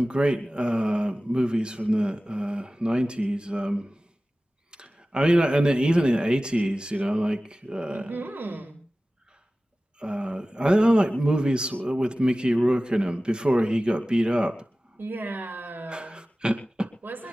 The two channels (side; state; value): both; normal; correlation 0.97